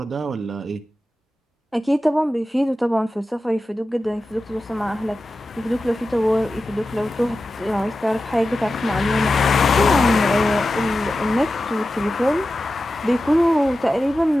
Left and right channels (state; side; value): normal; both; correlation 0.93